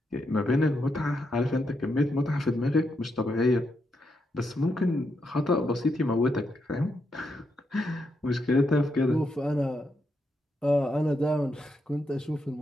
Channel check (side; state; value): both; normal; correlation 0.82